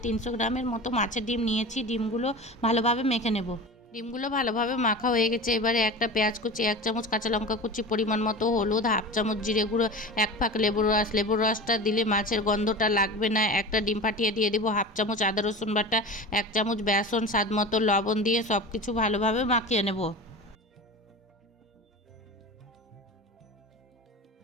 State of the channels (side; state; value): both; normal; correlation 0.31